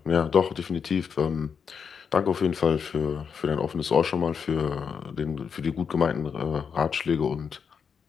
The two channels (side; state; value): right; quieter; 6.5 dB